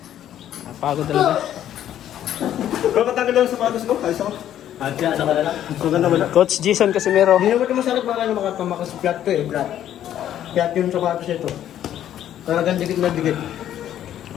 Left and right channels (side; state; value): right; quieter; 11.2 dB